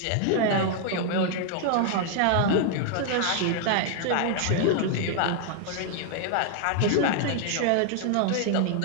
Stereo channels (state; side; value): different; both; correlation 0.00